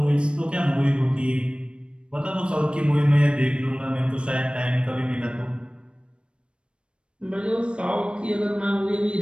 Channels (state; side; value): late; left; 0.056 ms